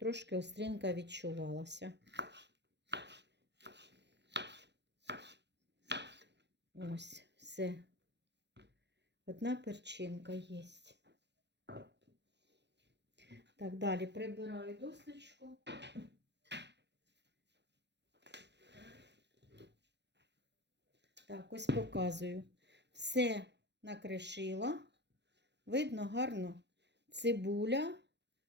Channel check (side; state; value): left; late; 0.50 ms